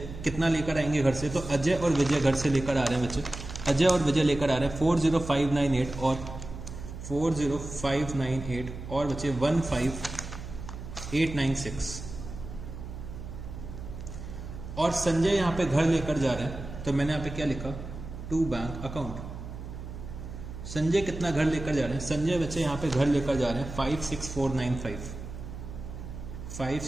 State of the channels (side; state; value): right; noise; hum, 10 dB below the sound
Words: कितना लेकर आएंगे घर से, तो अजय और विजय घर से लेकर आ रहे हैं बच्चे, अजय और विजय लेकर आ रहे हैं 40,598 और 40,598 और बच्चे 15,896। और संजय यहाँ पे घर लेकर जा रहे हैं, तो मैंने यहाँ पे क्या लिखा टू बैंक अकाउंट। संजय कितना घर लेकर जा रहे हैं, संजय बच्चे यहाँ पे घर लेकर जा रहे हैं 56,495,